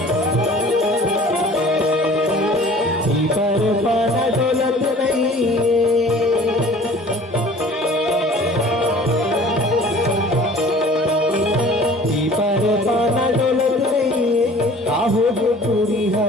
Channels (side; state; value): both; normal; correlation 0.48